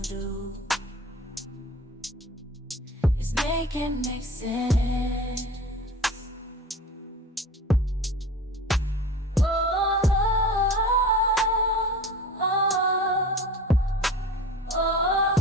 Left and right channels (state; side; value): normal; both; correlation 0.38